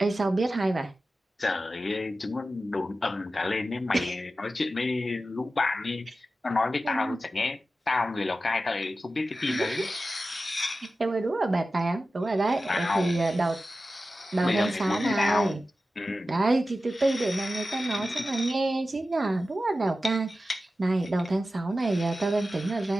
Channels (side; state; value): both; normal; correlation 0.93